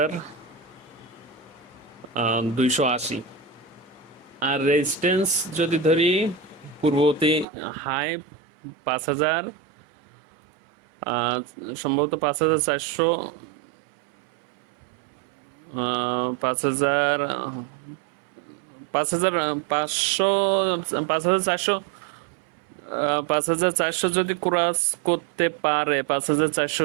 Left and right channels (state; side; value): drops out; left; at 7.5 s